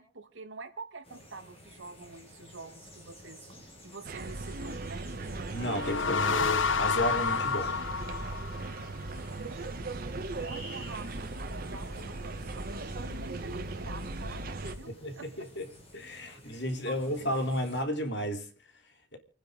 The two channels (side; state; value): both; normal; correlation 0.12